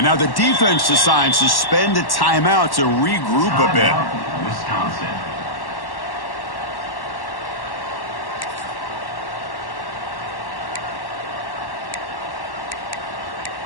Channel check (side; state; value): right; late; 1.1 ms